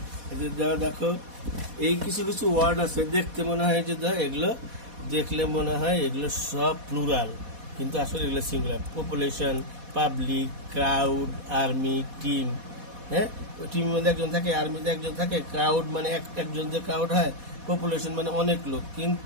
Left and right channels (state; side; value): late; left; 4.1 ms